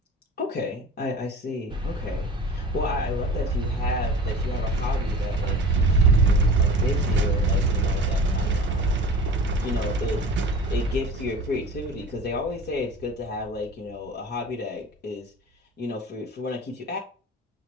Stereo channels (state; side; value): normal; both; correlation 0.39